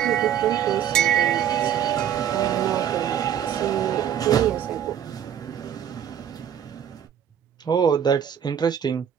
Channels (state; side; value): quieter; left; 9.3 dB